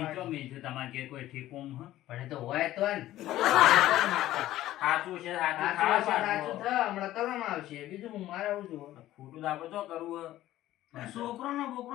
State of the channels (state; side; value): quieter; right; 14.5 dB